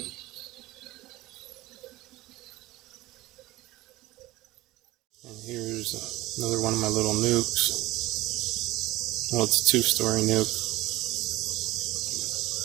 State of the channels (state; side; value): quieter; left; 18.2 dB